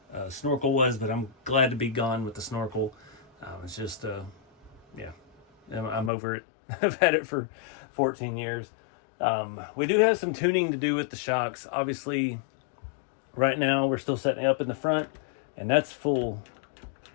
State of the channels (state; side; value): drops out; right; at 6.1 s